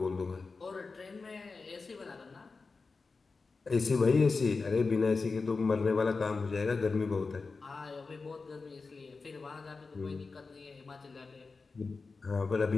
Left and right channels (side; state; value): right; quieter; 4.3 dB